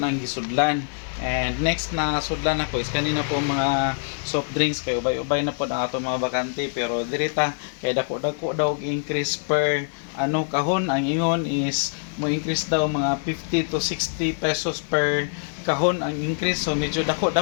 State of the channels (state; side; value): silent; right; digital silence